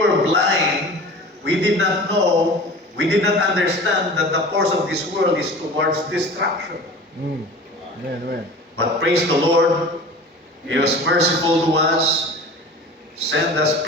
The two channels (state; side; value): normal; both; correlation 0.38